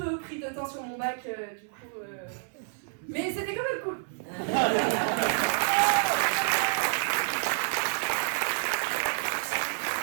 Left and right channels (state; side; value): silent; left; 57 dB below the other